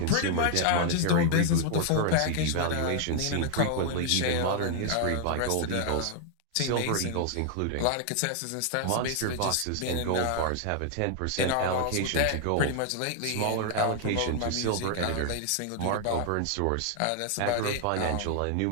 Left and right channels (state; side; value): different; both; correlation 0.00